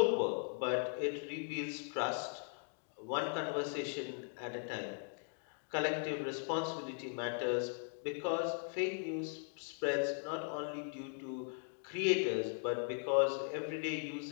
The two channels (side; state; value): right; silent; 52 dB below the other